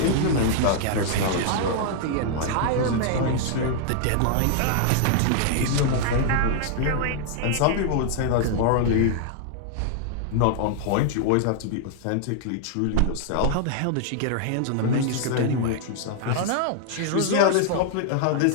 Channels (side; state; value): both; different; correlation 0.00